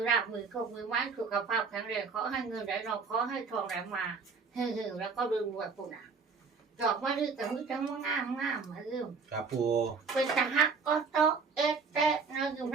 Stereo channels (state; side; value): quieter; left; 5.1 dB